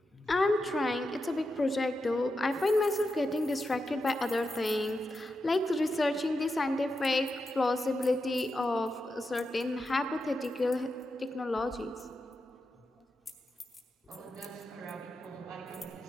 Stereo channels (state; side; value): normal; both; correlation 0.88